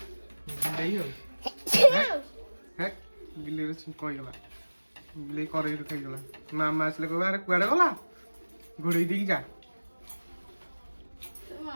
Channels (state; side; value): inverted; both; correlation -1.00